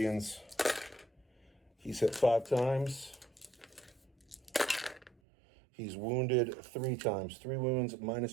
He's hit 5 times. He's wounded 3 times. 3 wounds,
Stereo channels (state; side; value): drops out; left; at 5.2 s